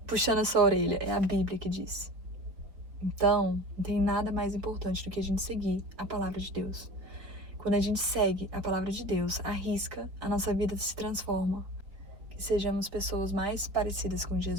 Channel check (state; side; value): late; left; 4.4 ms